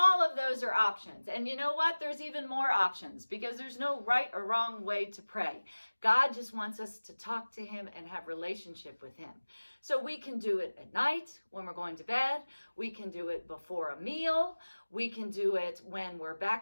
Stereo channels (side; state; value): both; inverted; correlation -1.00